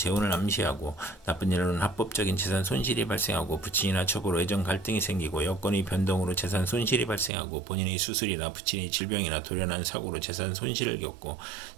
암시하고 나쁜 일로는 합법적인 재산 손실이 발생하고 부친이나 첩으로 애정 갈등이 생기고 여건의 변동으로 재산 손실이 발생하고 본인의 수술이나 부친의 질병이나 돌연한 사고로 재산 손실을 겪고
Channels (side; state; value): left; drops out; at 7.3 s